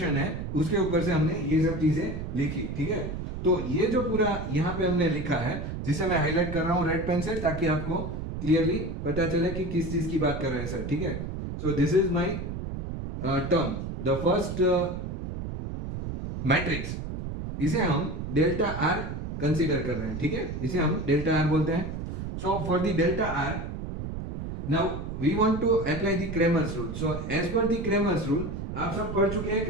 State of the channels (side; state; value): right; noise; rumble, 6 dB below the sound